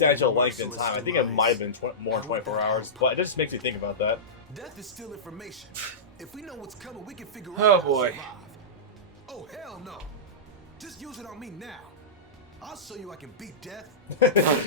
length in time. I think it might have been more than 24 hours, but it just makes me think about that. Death is still information. If we know what's coming, we can figure Oh, out how to boy. survive. Oh, hell no. Just use it on me now. I'll show you I can beat death.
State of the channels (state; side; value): normal; both; correlation -0.17